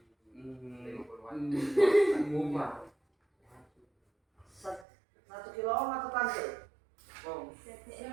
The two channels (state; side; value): drops out; left; at 4.9 s